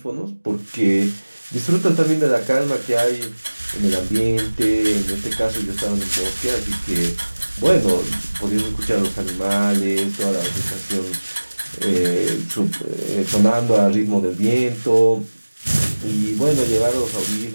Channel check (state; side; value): inverted; both; correlation -1.00